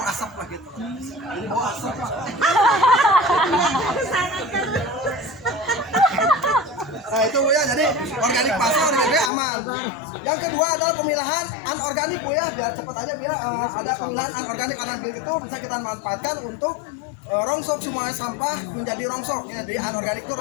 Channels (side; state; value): right; drops out; at 9.3 s